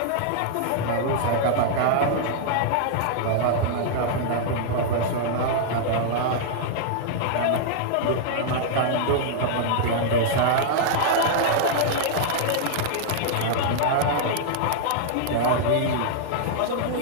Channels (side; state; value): both; different; correlation -0.01